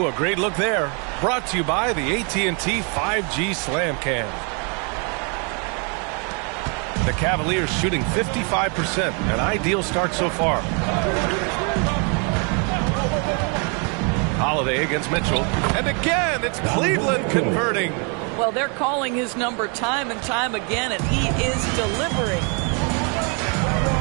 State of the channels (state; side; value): quieter; left; 35.7 dB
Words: a great look there. Brought to you by the AT&T 5G Slam Cam. The Cavaliers shooting 55%. An ideal start so far. Holiday against Mitchell. And again, it's Cleveland converting. Well, they're calling his number time and time again, and he is delivering.